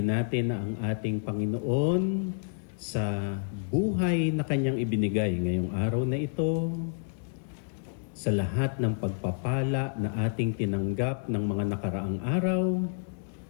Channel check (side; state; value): right; silent; digital silence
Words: natin ang ating Panginoon sa buhay na Kanyang ibinigay ngayong araw na ito, sa lahat ng pagpapala na ating tinanggap ng mga nakaraang araw,